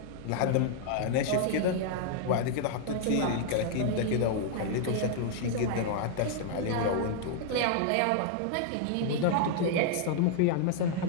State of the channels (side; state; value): both; different; correlation 0.00